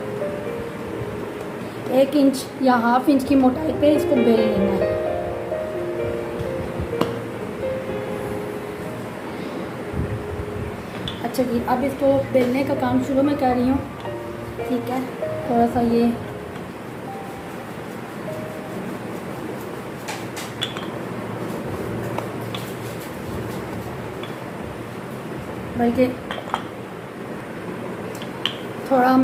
1 इंच या हाफ इंच की मोटाई पे इसको बेल लेना है। अच्छा जी, अब इसको बेलने का काम शुरू में कर रही हूँ, ठीक है। थोड़ा सा ये बल्कि थोड़ा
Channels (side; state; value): both; identical; correlation 1.00